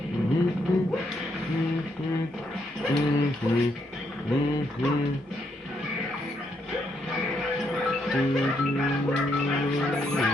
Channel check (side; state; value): both; normal; correlation 0.76